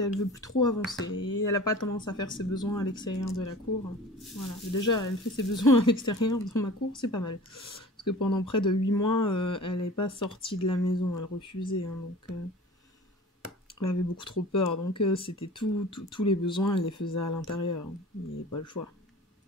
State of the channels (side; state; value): both; normal; correlation 0.41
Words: veut plus trop avancer. Et elle a pas tendance à faire ses besoins à l'extérieur de la cour. Voilà. Déjà, elle fait ses besoins à l'extérieur dans ma cour, c'est pas mal. Parce que pendant près de 8 mois, elle n'est pas sortie de la maison, elle refusait. Hein, donc... Elle avait beaucoup trop peur, donc c'était tous les besoins, elle les faisait à l'intérieur. Il n'y avait pas le choix.